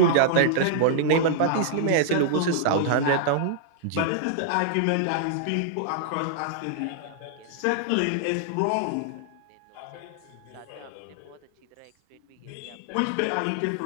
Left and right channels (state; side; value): different; both; correlation -0.01